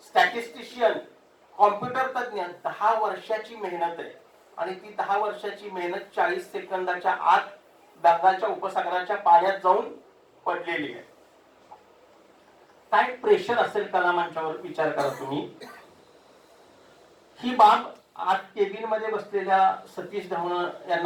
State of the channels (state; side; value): identical; both; correlation 1.00